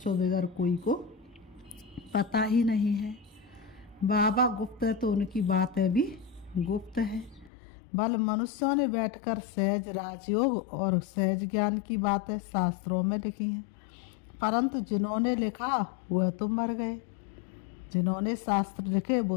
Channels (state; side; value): drops out; right; at 7.5 s